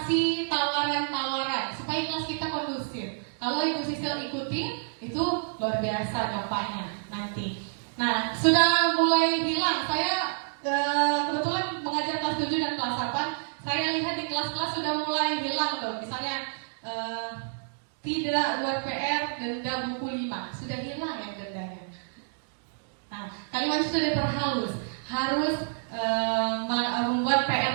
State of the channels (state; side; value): silent; left; digital silence